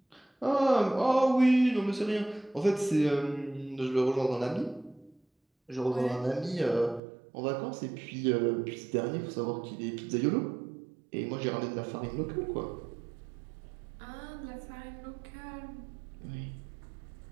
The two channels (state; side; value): drops out; left; at 7.0 s